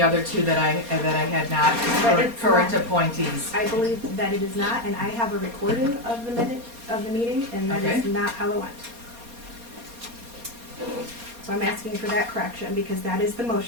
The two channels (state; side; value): late; left; 4.2 ms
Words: other two that I had not, But it's current not. appointees. I believe that it is not, and I have a recording of the minute of the meeting, and that is Okay. not how it went. So I'm asking for that correction, because that is the